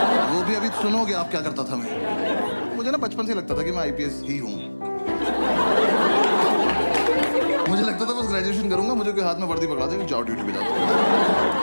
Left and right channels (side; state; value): both; inverted; correlation -1.00